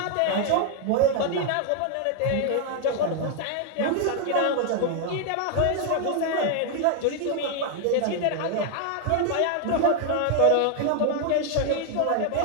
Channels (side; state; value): both; different; correlation 0.00